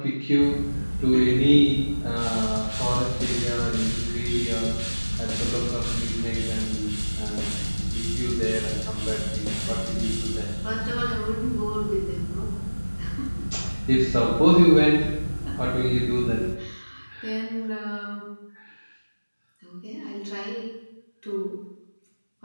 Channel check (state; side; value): inverted; both; correlation -1.00